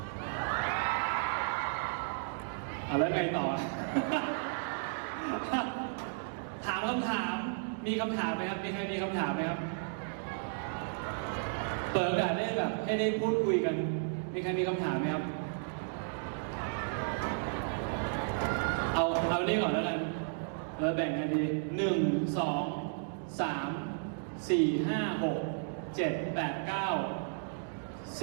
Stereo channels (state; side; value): silent; left; digital silence